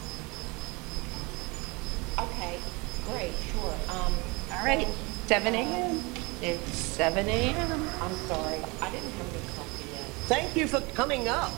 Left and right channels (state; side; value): quieter; left; 26.6 dB